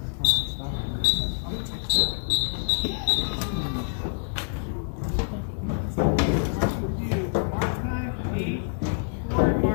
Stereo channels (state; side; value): silent; right; digital silence